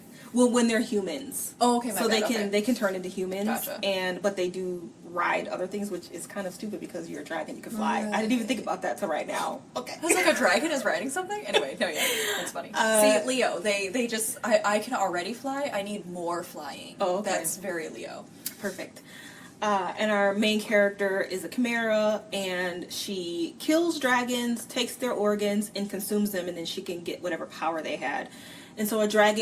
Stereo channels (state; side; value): identical; both; correlation 1.00